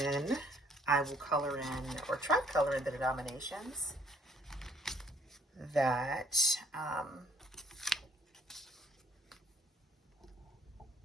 I will color in, or try to color in, the denominations that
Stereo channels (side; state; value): both; normal; correlation 0.63